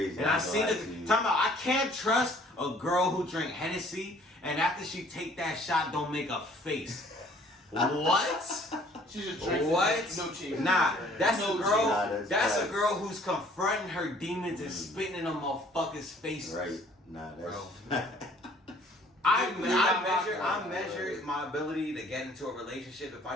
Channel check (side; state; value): both; normal; correlation 0.57